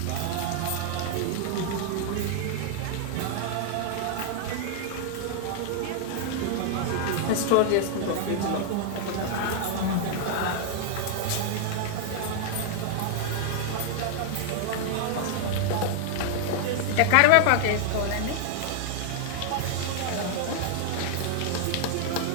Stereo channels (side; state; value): both; different; correlation 0.00